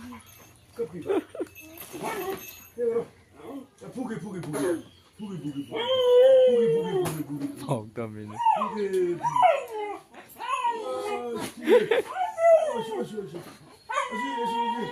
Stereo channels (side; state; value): both; identical; correlation 1.00